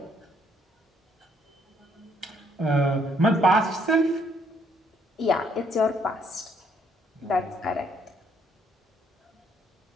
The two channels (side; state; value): both; normal; correlation 0.68